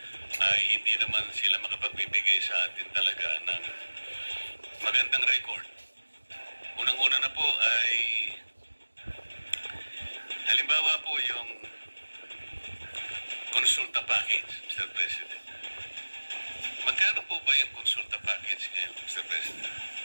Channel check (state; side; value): inverted; both; correlation -1.00